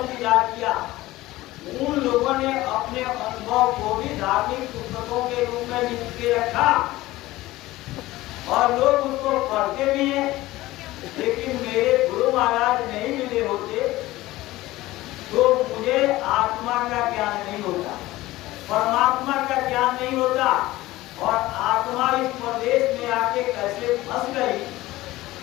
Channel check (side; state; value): right; quieter; 17.6 dB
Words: दीदार किया, उन लोगों ने अपने अनुभव को भी धार्मिक पुस्तकों के रूप में लिख के रखा और लोग उसको पढ़ते भी हैं। लेकिन मेरे गुरु महाराज नहीं मिले होते तो मुझे आत्मा का ज्ञान नहीं होता, परमात्मा का ज्ञान नहीं होता, और आत्मा इस प्रदेश में आके कैसे फंस गई